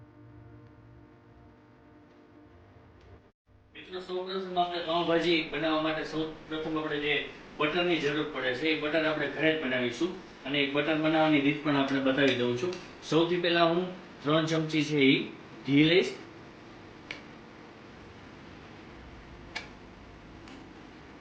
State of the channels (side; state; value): both; identical; correlation 1.00